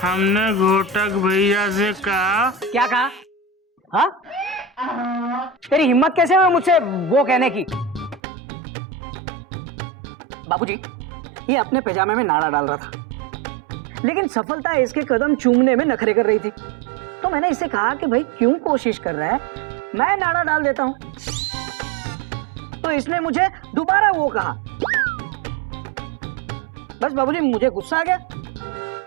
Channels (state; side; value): drops out; left; at 8.2 s